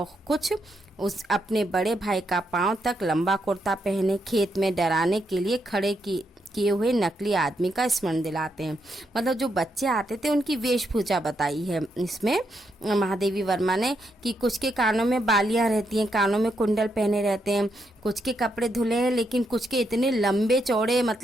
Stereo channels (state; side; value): normal; both; correlation 0.80